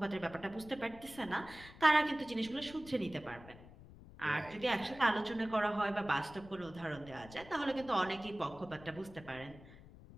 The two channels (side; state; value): left; noise; rumble, 18 dB below the sound